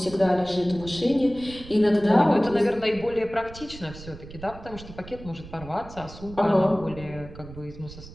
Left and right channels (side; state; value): right; noise; rumble, 15 dB below the sound